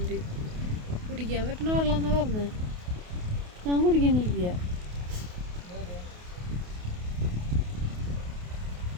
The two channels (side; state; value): left; late; 28 ms